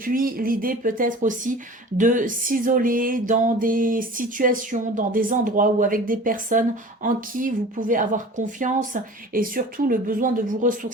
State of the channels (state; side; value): normal; both; correlation 0.41